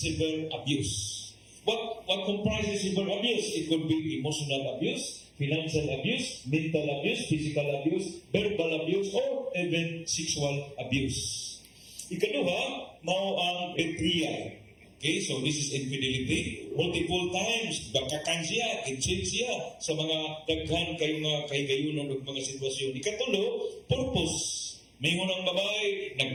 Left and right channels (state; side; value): identical; both; correlation 1.00